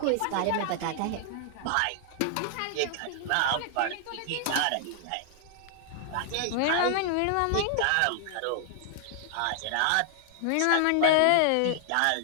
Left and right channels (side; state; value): both; different; correlation -0.01